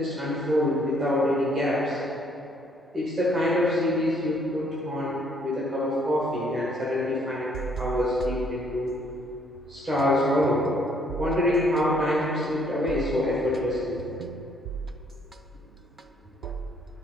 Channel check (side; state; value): both; normal; correlation 0.65